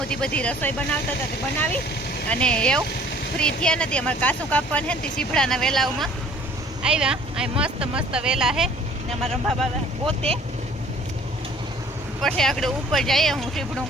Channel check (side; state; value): both; normal; correlation 0.53